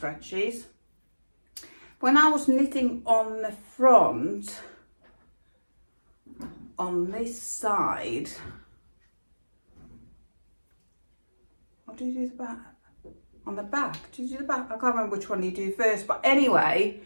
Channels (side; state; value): both; inverted; correlation -1.00